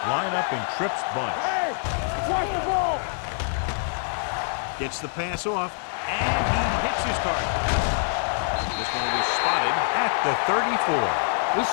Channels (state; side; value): silent; right; digital silence